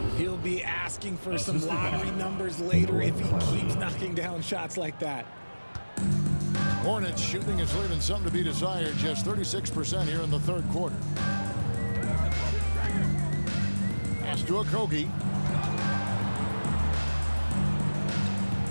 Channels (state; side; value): inverted; both; correlation -1.00